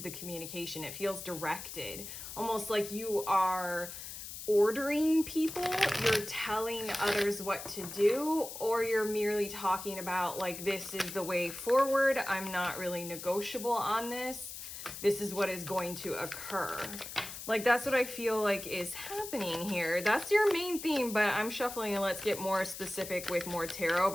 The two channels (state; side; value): noise; left; hiss, 10 dB below the sound